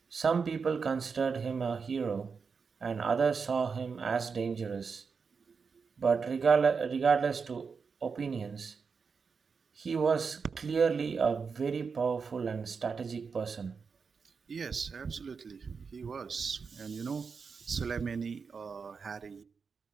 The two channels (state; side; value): quieter; left; 5.4 dB